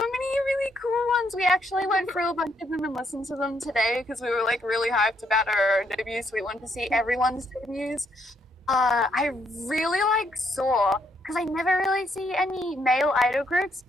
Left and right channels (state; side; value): normal; both; correlation 0.74